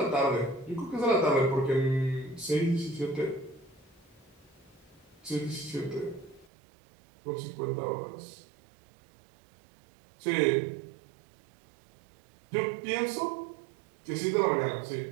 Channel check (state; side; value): drops out; left; at 6.5 s